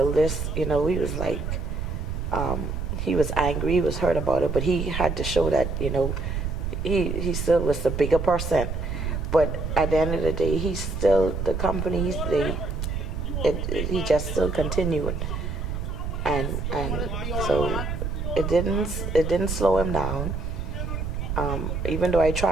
this, he was like, he was angry, he was hurt about it, but he had to show that, he still was the bigger person. But at the end of the day, he's still, the companies, he just still continued. And so it didn't slow him down. Even though I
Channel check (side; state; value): right; noise; rumble, 3 dB below the sound